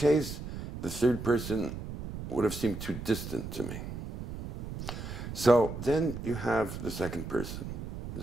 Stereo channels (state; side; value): noise; right; rumble, 8 dB below the sound